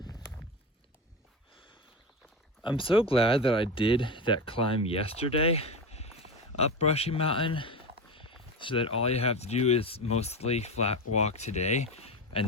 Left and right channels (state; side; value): normal; both; correlation 0.21